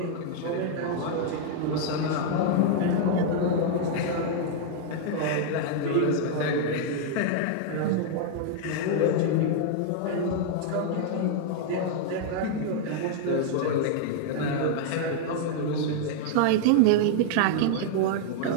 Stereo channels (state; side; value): different; both; correlation -0.01